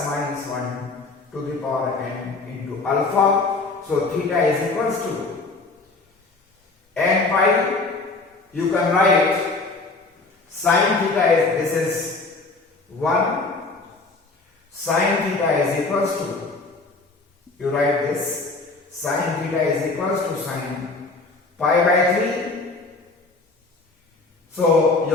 minus 1 to the power n into alpha. So theta is equals to n pi. You can write sin theta is, this is 1. Sin theta is equals to, you write this, sin theta is equals to sin pi by 3. So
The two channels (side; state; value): right; quieter; 3.6 dB